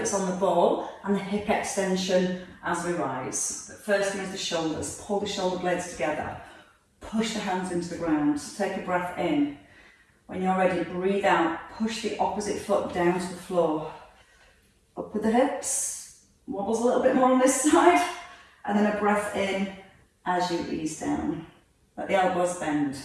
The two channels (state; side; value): identical; both; correlation 1.00